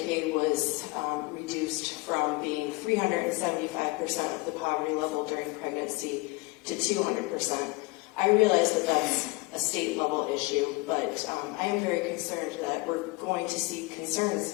was reduced from being 375% of the poverty level during pregnancy to 200%. I realize that that's a state level issue, but I am very concerned that we're going to see concerns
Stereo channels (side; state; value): right; quieter; 24.6 dB